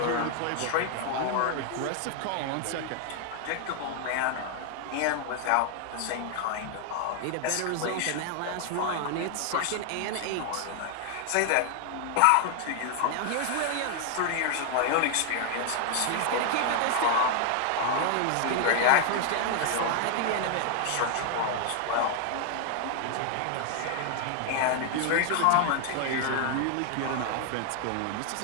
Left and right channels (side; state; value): both; different; correlation 0.00